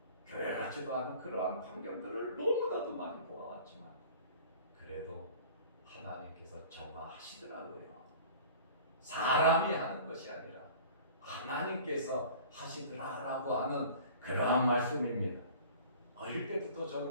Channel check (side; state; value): both; inverted; correlation -0.45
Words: 교회 같지도 않은 그러한 환경들을 너무나도 많이 보아왔지만 그래도 하나님께서 정화하시더라고요. 사람이 하는 것이 아니라 하나님께서 하시더라라고 하는 그러한 말씀입니다. 어릴 때부터